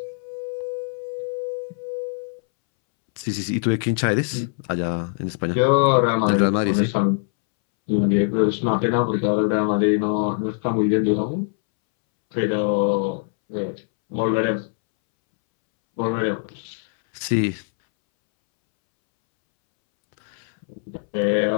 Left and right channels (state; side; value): silent; right; 64 dB below the other